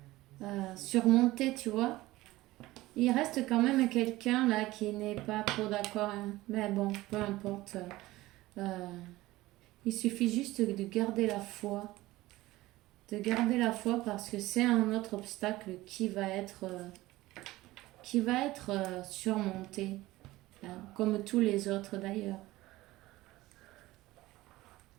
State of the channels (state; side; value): quieter; left; 18.1 dB